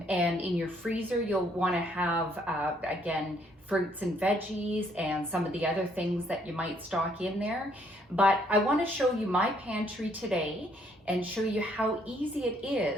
in your freezer, you'll want to have, again, fruits and veggies and some of the other things that you might stock in there. But I want to show you my pantry today and show you how easy it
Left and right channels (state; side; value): normal; both; correlation 0.68